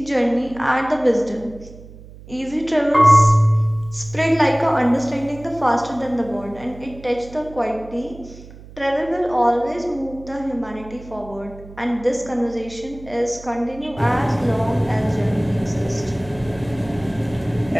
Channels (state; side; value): noise; right; hum, 18 dB below the sound